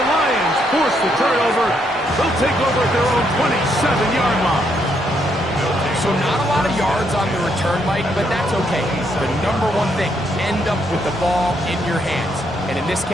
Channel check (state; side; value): normal; both; correlation 0.75